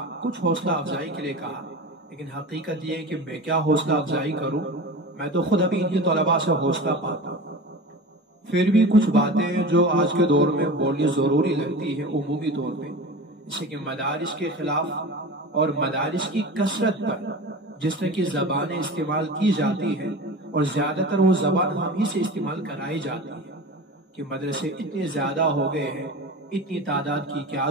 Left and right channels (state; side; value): normal; both; correlation 0.32